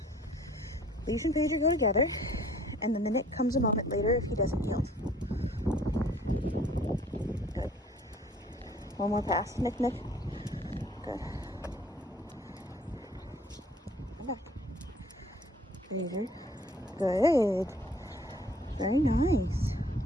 Leash and pager go together, and then the Nick comes a moment later if he doesn't yield. Good. One more pass. Nick, Nick. Good. Come back. Pager. Good. Very nice.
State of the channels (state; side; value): normal; both; correlation 0.55